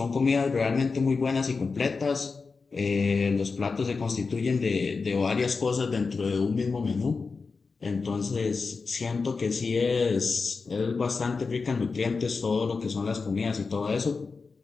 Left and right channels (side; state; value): right; quieter; 4.5 dB